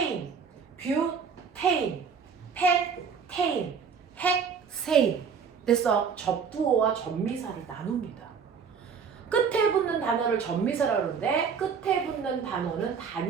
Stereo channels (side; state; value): left; quieter; 6.3 dB